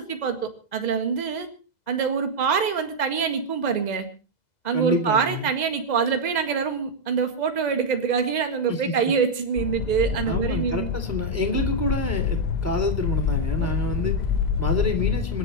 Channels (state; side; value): late; right; 2.0 ms